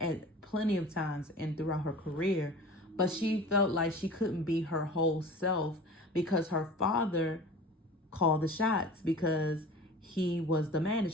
at plenty of times and throughout her career, but she felt like she couldn't be her whole self because her father called the shots, because he was the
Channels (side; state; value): both; normal; correlation 0.39